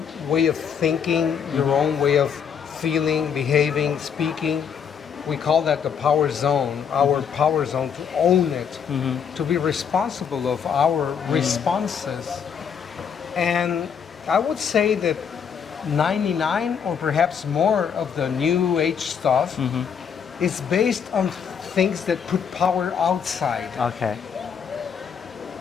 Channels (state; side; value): quieter; right; 7.3 dB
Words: way of thinking, your own way of feeling, behaving, speaking. We call that the power zone, our power zone, to own it, to be responsible of our responses. And I would say that 99 or perhaps more of the new age stuff is based on things that put power outside. Okay.